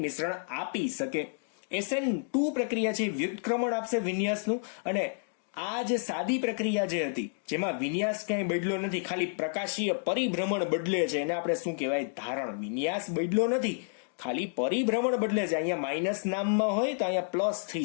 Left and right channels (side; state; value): right; silent; digital silence